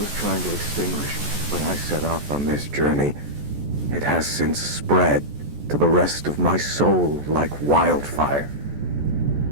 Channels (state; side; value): late; left; 14 ms